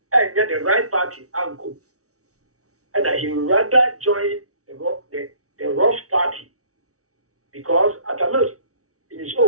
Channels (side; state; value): left; late; 0.65 ms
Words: and get the right party uncle and he rather join the rough party because at a most in his